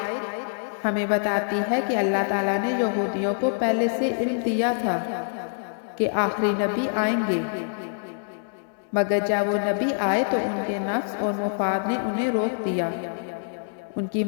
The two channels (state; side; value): silent; right; digital silence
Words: ہمیں بتاتی ہے کہ اللہ تعالیٰ نے یہودیوں کو پہلے سے علم دیا تھا کہ آخری نبی آئیں گے، مگر جب وہ نبی آئے تو ان کے نفس اور مفاد نے انہیں روک دیا۔ ان کی